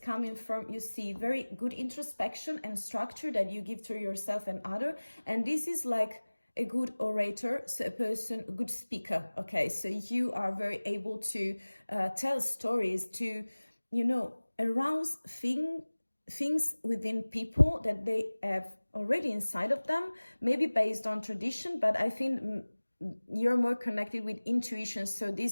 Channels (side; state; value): both; inverted; correlation -1.00